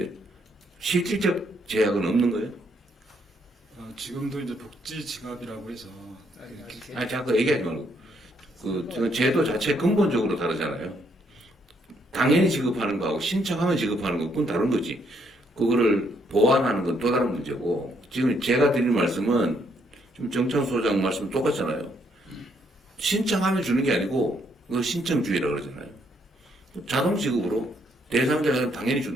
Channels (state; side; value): normal; both; correlation 0.72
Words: 실질적 제약은 없는 거예요? 지금도 이제 복지 지갑이라고 해서 아니 자꾸 얘기하지 말고 그 제도 자체 근본적으로 다르잖아요. 당연히 지급하는 거하고 신청하면 지급하는 거 그건 다른 거지. 그거를 보완하는 건 또 다른 문제고 지금 제가 드린 말씀은 좀 정창 소장 말씀 똑같잖아요. 신청하면 주는 게 아니고 그거 신청주의라고 그러잖아요. 자동 지급으로 대상자가 당연히